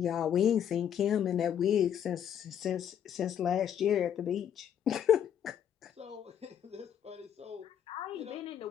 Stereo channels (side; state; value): right; quieter; 9.2 dB